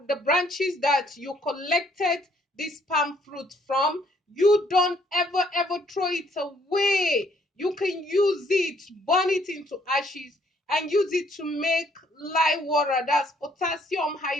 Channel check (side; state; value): both; normal; correlation 0.66